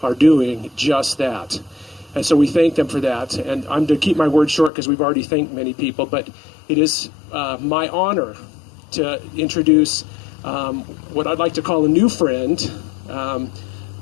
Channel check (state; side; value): drops out; right; at 4.7 s